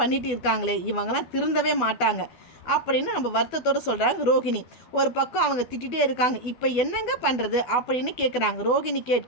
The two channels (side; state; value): right; late; 12 ms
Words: இருக்காங்களே, இவங்கெல்லாம் திருந்தவே மாட்டாங்க அப்படின்னு நம்ம வருத்தத்தோடு சொல்கிறாங்க ரோகிணி. ஒரு பக்கம் அவங்க திட்டிகிட்டே இருக்காங்க. இப்போ என்னங்க பண்ணுறது அப்படின்னு கேட்குறாங்க. ரோகிணி